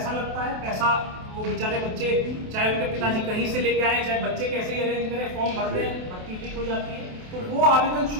लगता है। पैसा वो बेचारे बच्चे, चाहे उनके पिताजी कहीं से लेके आए, चाहे बच्चे कैसे ही अरेंज करें, फॉर्म भर दें, भर्ती लीक हो जाती है, तो वो आवेदन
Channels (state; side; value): late; left; 28 ms